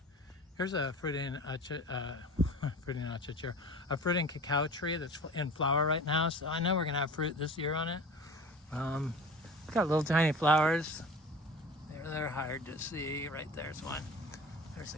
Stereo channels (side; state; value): both; normal; correlation 0.38